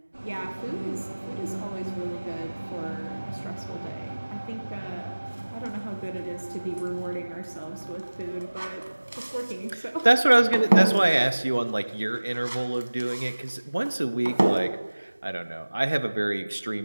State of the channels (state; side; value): inverted; both; correlation -1.00